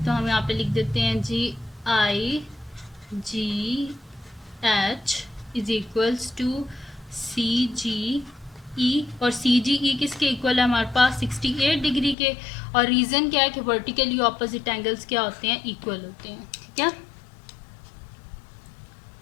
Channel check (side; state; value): right; drops out; at 12.2 s